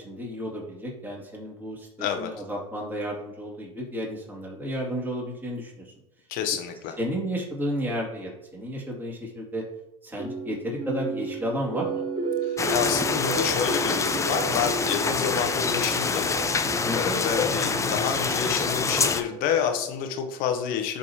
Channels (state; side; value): quieter; right; 3.4 dB